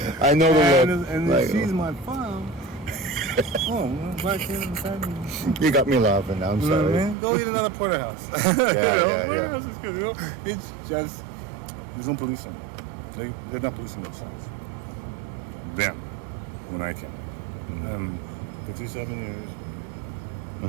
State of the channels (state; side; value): drops out; left; at 7.2 s